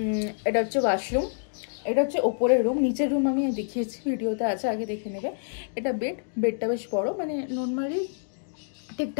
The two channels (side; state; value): right; silent; digital silence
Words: এটা হচ্ছে ওয়াশরুম, এটা হচ্ছে ওপরের রুম। নিচের রুম আমি দেখিয়েছি, ভিডিওতে আছে, আগে দেখে নেবে। এটা বেডটা বেশ বড়, মানে নর্মালি